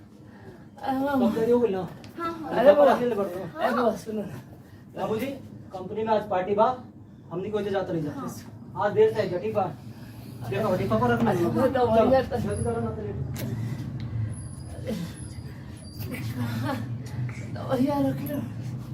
हो गई ना। अरे बुआ, ले बढ़ो। ए बुआ सुनो ना, बाबूजी कंपनी में आज पार्टी बा, हमनी को जाता नहीं जाते। आज देर से जटी बा, देखो बड़ी पापा रखना है। अरे दवाइया तो जल्दी करो ना तो लेट। दवाइया रख लो।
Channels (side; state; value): both; identical; correlation 1.00